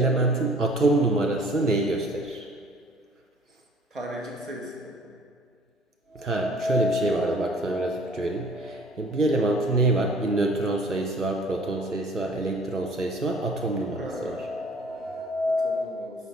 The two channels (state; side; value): normal; both; correlation 0.52